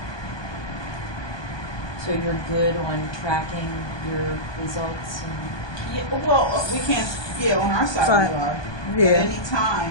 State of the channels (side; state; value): right; late; 1.2 ms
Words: So you're good on tracking your results and Yeah, well, we can't. Yeah, on our side Fine. we are. Yeah. At any